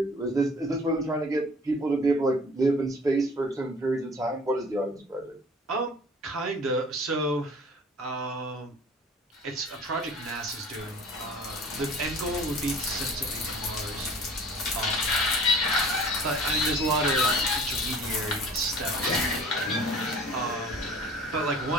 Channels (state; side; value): normal; both; correlation 0.46